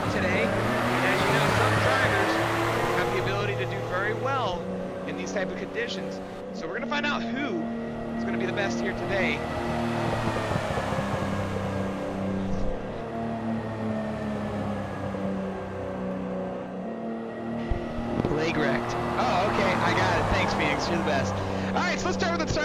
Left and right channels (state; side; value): identical; both; correlation 1.00